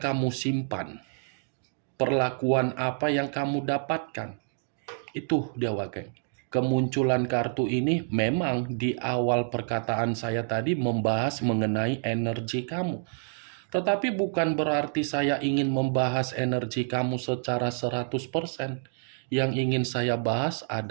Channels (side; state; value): left; silent; digital silence